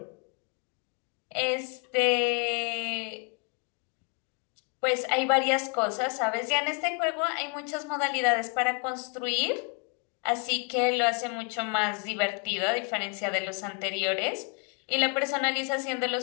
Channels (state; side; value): quieter; right; 35.3 dB